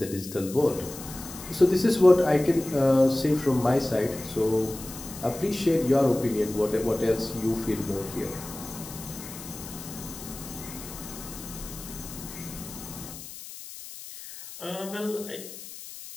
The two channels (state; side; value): noise; left; hiss, 13 dB below the sound